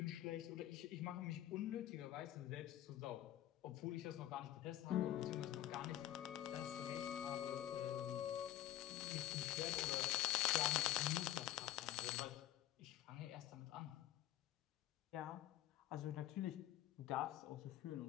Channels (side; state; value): right; quieter; 13.6 dB